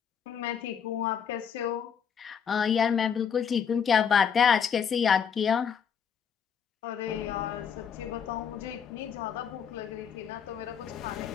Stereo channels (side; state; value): right; quieter; 7.4 dB